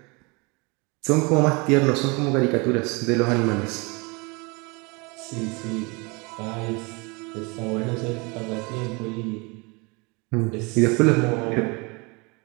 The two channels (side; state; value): left; quieter; 28.4 dB